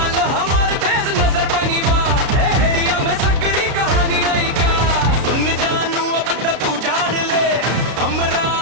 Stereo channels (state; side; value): late; left; 33 ms